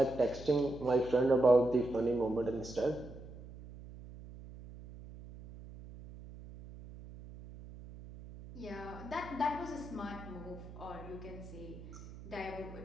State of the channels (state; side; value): noise; right; hum, 15 dB below the sound